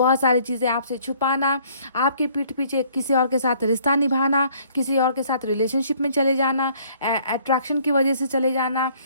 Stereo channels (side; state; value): both; inverted; correlation -0.60